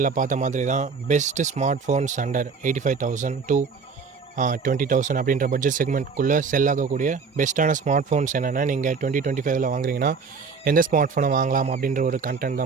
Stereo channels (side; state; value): left; quieter; 5.3 dB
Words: பார்த்த மாதிரி தான் best smart phones under 85,000 to 20,000 அப்படின்ற பட்ஜெட் செக்மெண்ட்குள்ளே செல் ஆகக்கூடிய பெஸ்ட்டான ஸ்மார்ட் ஃபோன்ஸ் என்னென்னா நீங்கள் 2025 வாங்குறீங்கன்னா எந்த ஸ்மார்ட் ஃபோனை வாங்கலாம் அப்படின்ற ஒரு கண்டென்ட்